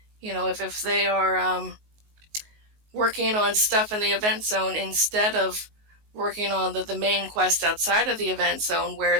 if they are working on stuff in the event zone instead of working on the main quest outside of the event zone, where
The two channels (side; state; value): left; late; 19 ms